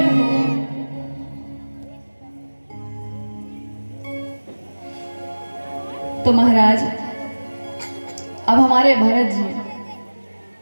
हो। तो महाराज अब हमारे भरत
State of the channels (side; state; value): both; inverted; correlation -1.00